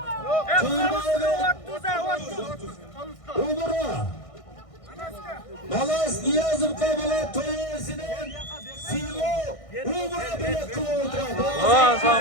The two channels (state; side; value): late; right; 1.6 ms